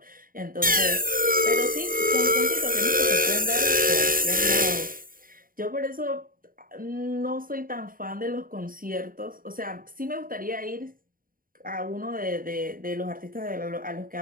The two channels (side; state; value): left; late; 0.41 ms